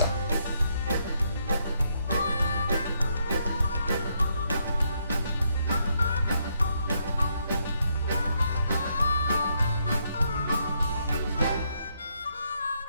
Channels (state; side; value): inverted; both; correlation -0.76